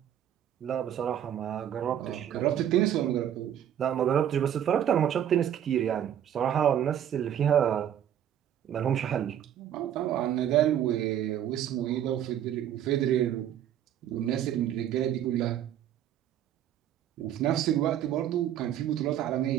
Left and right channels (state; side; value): quieter; left; 10.3 dB